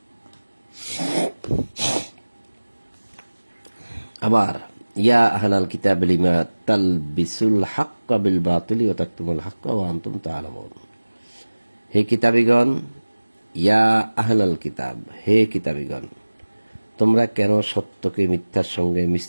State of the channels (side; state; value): both; inverted; correlation -1.00